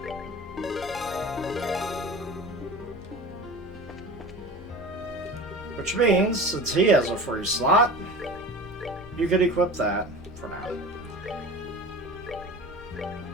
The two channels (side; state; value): both; normal; correlation 0.35